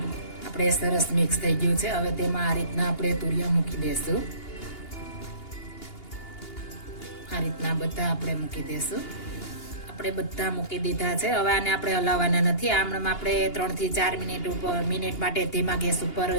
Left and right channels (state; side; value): late; right; 2.8 ms